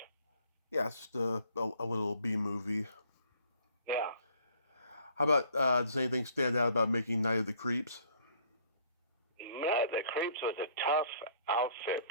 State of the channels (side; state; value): both; inverted; correlation -0.59